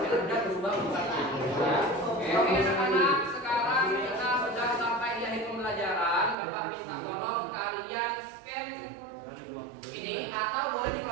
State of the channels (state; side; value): drops out; left; at 6.4 s